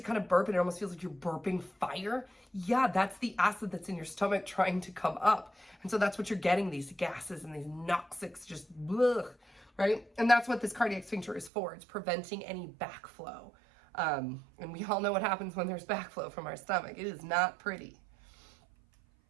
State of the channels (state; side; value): drops out; left; at 11.5 s